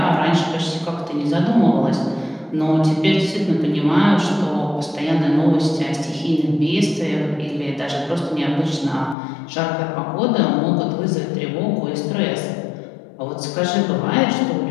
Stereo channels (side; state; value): right; drops out; at 9.2 s